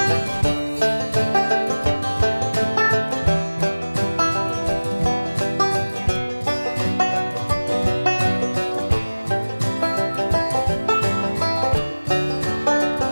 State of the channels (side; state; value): both; inverted; correlation -1.00